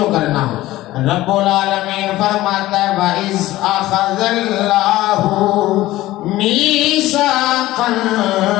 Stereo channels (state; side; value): quieter; right; 16.5 dB